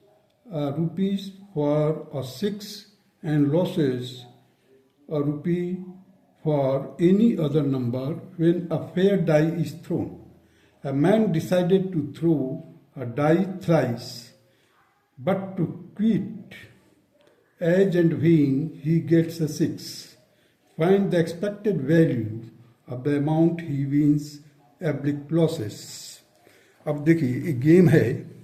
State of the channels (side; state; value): both; identical; correlation 1.00